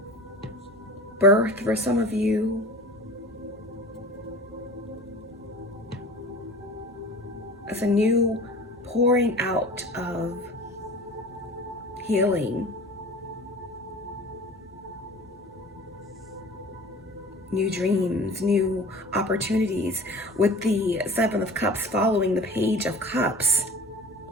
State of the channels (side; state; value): both; normal; correlation 0.40